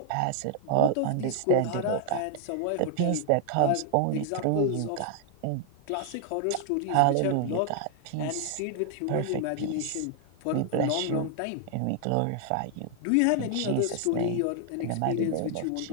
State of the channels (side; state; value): both; different; correlation 0.00